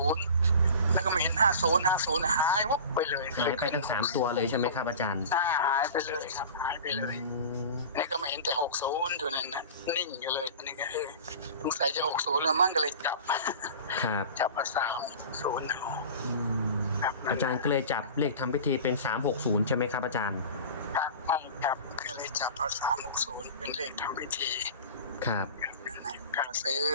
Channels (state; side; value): inverted; both; correlation -0.36